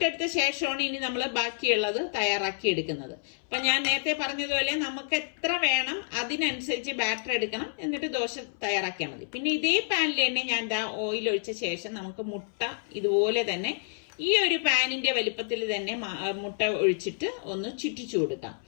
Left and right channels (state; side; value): silent; right; 59 dB below the other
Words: ശേഷമാണ് ഇനി നമ്മൾ ബാക്കിയുള്ളത് തയ്യാറാക്കി എടുക്കുന്നത്. അപ്പൊ ഞാൻ നേരത്തെ പറഞ്ഞതുപോലെ നമുക്ക് എത്ര വേണം അതിനനുസരിച്ച് ബാറ്റർ എടുക്കണം, എന്നിട്ട് ദോശ തയ്യാറാക്കിയാൽ മതി. പിന്നെ ഇതേ പാനിൽ തന്നെ ഞാൻ ഓയിൽ ഒഴിച്ച ശേഷം നമുക്ക് മുട്ട ഇതുപോലെ തന്നെ ഈ ഒരു പാനിന്റെ വലിപ്പത്തിൽ തന്നെ മുട്ട ഒഴിച്ചിട്ട് ഒന്ന് ചുറ്റിച്ചു കൊടുക്കാം.